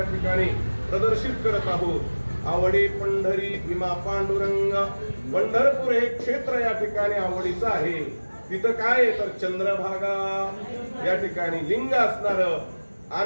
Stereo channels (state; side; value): inverted; both; correlation -1.00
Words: ठिकाणी प्रदर्शित करत आहोत। आवडी पंढरी भीमा पांडुरंग, पंढरपूर हे क्षेत्र या ठिकाणी आवडीचं आहे। तिथं काय तर चंद्रभागा या ठिकाणी लिंग असणार